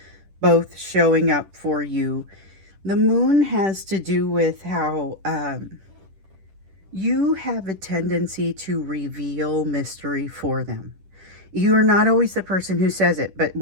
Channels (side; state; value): left; late; 10 ms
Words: both showing up for you. The Moon has to do with how you have a tendency to reveal mystery for them. You're not always the person who says it, but